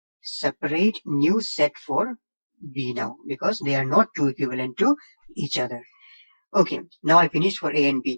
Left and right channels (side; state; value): both; inverted; correlation -1.00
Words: separate new set for B now because they are not 2 equivalent to each other. Okay, now I finished for A and